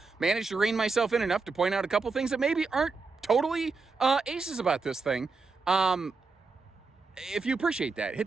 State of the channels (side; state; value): left; quieter; 4.3 dB